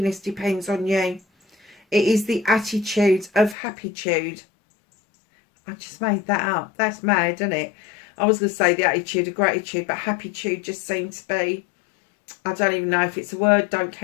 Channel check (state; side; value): drops out; right; at 3.6 s